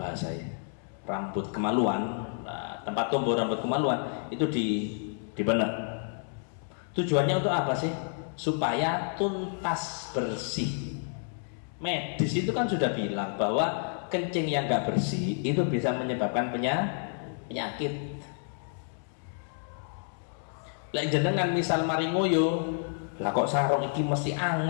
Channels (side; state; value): right; silent; 58 dB below the other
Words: rambut kemaluan. Nah, tempat tumbuh rambut kemaluan itu dipenek. Tujuannya untuk apa sih? Supaya tuntas bersih. Medis itu kan sudah bilang bahwa kencing yang nggak bersih itu bisa menyebabkan penyakit. Lek jenengan misal mari ngoyo, lah kok sarung iki mesti